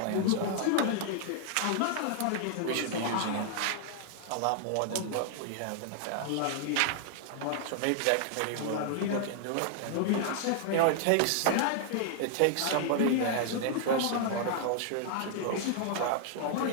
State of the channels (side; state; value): both; different; correlation 0.00